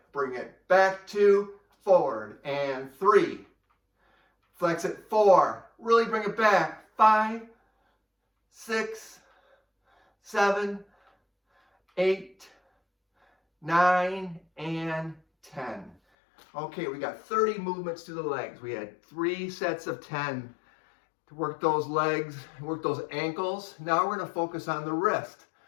Bring it back 2, forward, and 3. Flex it 4. Really bring it back. 5, 6, 7, 8, 9, and 10. Okay, we got 30 movements to the legs. We had 3 sets of 10 to work those legs, work those ankles. Now we're going to focus on the wrist.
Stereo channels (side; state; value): right; drops out; at 16.0 s